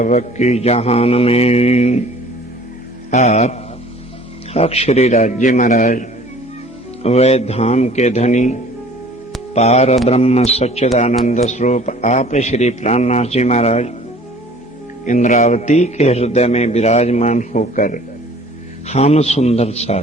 जहान में आप अक्षरी राज्य महाराज, वह धाम के धनी पार ब्रह्म सच्चिदानंद स्वरूप आप श्री प्राणनाथ जी महाराज इंद्रावती के हृदय में विराजमान होकर हम सुंदर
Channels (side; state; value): both; normal; correlation 0.50